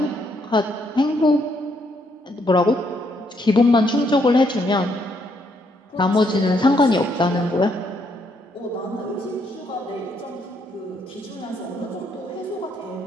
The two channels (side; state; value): both; normal; correlation 0.73